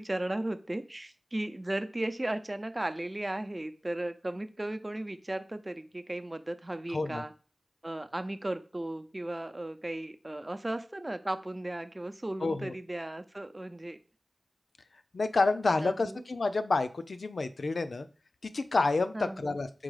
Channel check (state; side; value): normal; both; correlation 0.96